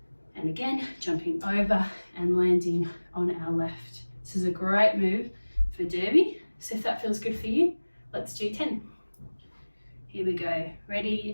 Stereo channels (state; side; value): inverted; both; correlation -1.00